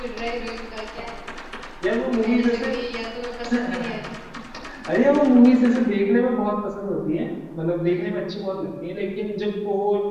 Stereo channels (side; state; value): both; identical; correlation 1.00